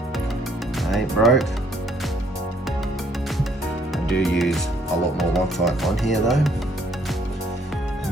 I ain't broke. I do use a lot more Loctite on here though.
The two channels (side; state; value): both; normal; correlation 0.65